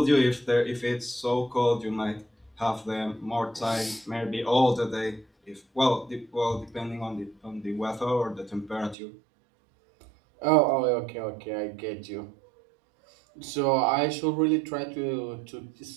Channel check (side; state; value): left; drops out; at 9.0 s